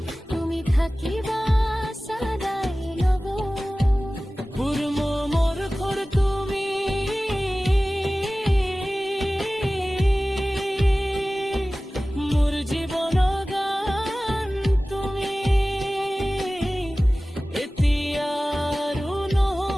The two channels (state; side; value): normal; both; correlation 0.97